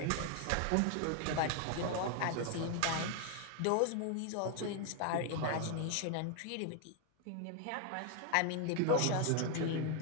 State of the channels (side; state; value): both; different; correlation 0.01